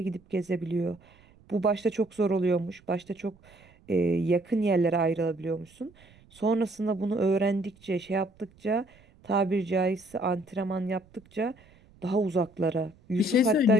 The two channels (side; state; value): right; noise; rumble, 28 dB below the sound